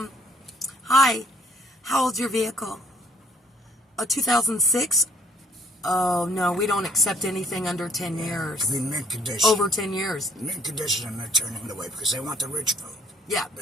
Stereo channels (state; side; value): normal; both; correlation 0.62